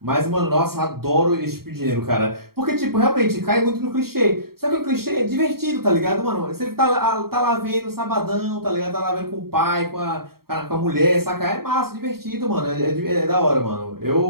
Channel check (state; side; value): late; left; 0.94 ms